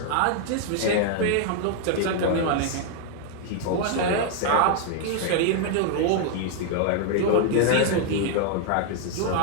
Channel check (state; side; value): different; both; correlation 0.00